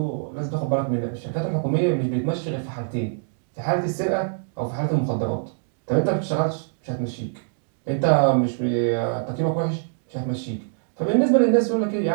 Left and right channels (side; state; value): left; silent; digital silence